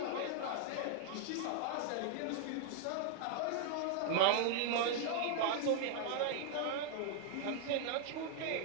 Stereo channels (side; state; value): both; different; correlation 0.00